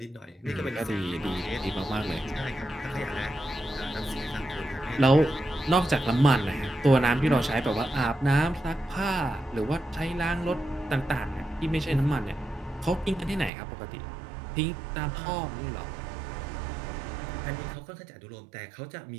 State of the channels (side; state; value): left; drops out; at 13.5 s